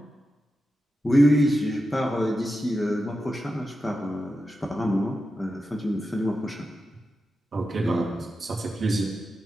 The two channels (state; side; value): normal; both; correlation 0.90